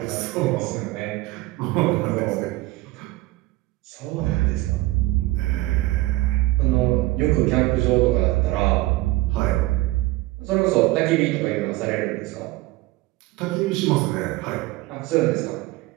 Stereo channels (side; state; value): left; quieter; 19.3 dB